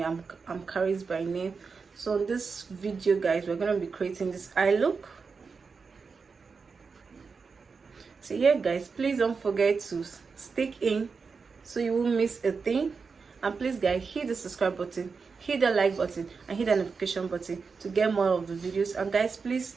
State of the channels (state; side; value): quieter; left; 5.0 dB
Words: I'm Karis by name. So in this video guys, we're gonna be creating this eye look. So yeah guys, please don't forget to stick in so you won't miss a thing. And please guys, hit the subscribe button, hit the like button, and hit the notification button to get more of the videos. And guys, please